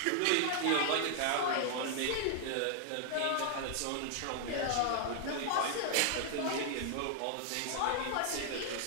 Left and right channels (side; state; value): both; different; correlation 0.00